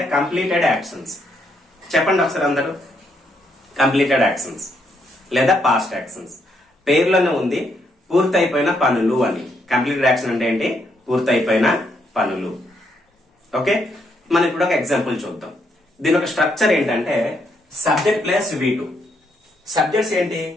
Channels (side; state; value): both; normal; correlation 0.75